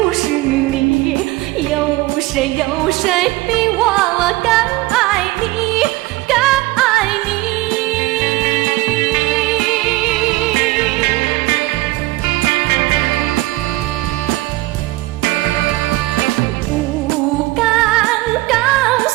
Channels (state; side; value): quieter; left; 19.7 dB